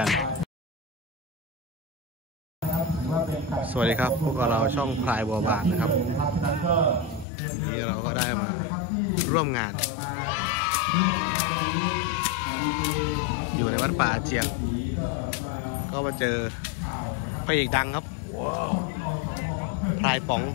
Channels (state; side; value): drops out; right; at 7.2 s